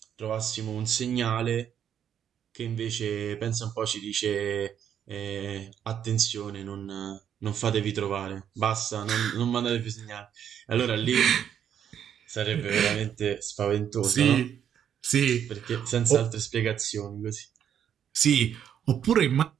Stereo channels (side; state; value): left; quieter; 9.1 dB